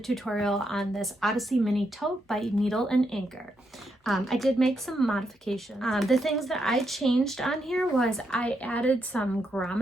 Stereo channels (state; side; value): normal; both; correlation 0.80